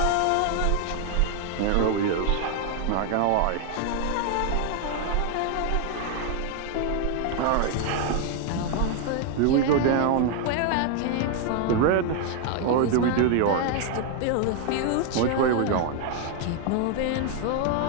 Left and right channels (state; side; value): different; both; correlation 0.00